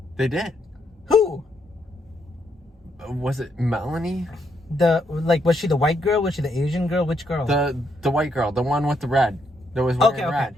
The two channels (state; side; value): normal; both; correlation 0.76